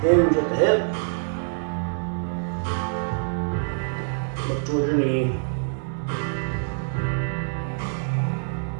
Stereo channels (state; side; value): silent; left; digital silence